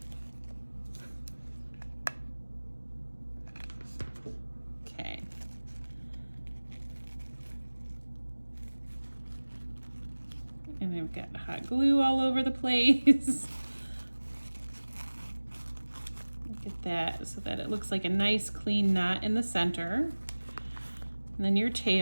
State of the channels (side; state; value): both; inverted; correlation -1.00